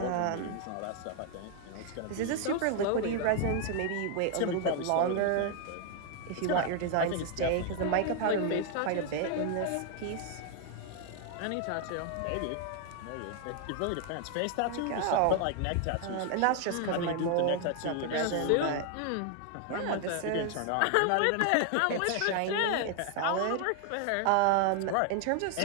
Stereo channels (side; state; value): both; different; correlation 0.00